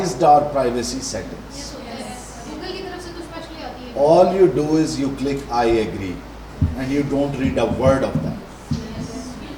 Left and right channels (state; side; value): identical; both; correlation 1.00